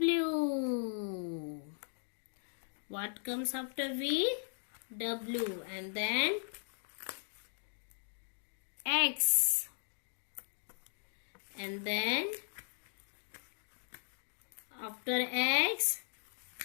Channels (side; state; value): right; silent; digital silence